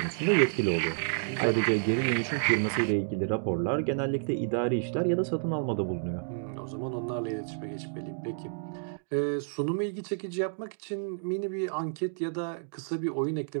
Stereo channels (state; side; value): silent; left; digital silence